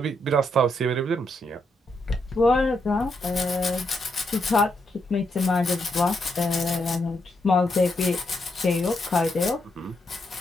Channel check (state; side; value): normal; both; correlation 0.80